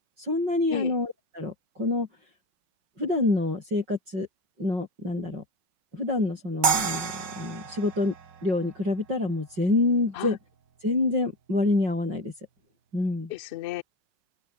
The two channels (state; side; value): late; left; 5.4 ms